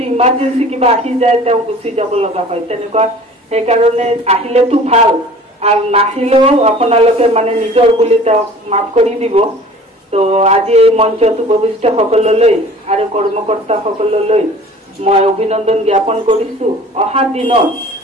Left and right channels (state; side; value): normal; both; correlation 0.45